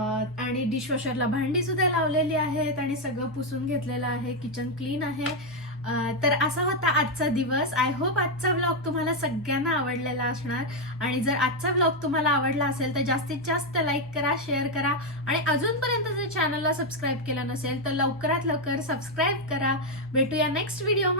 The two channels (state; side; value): normal; both; correlation 0.03